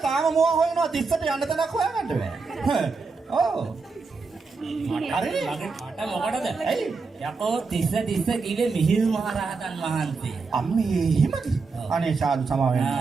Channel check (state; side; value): quieter; left; 4.5 dB